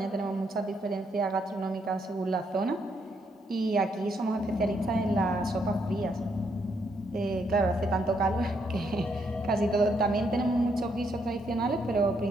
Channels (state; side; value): normal; both; correlation 0.75